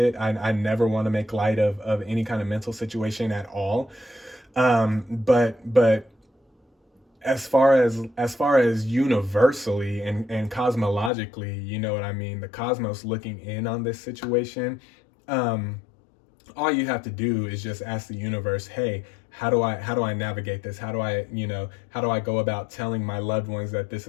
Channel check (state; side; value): drops out; right; at 11.1 s